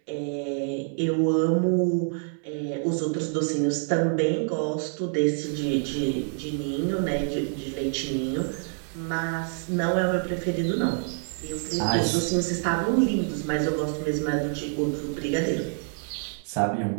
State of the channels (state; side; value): silent; left; 57 dB below the other